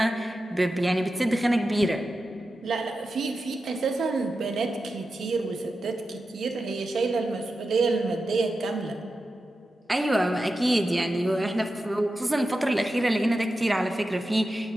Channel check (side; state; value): both; normal; correlation 0.91